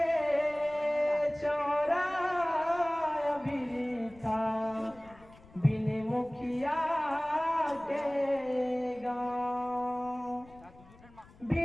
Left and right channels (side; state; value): left; noise; rumble, 24 dB below the sound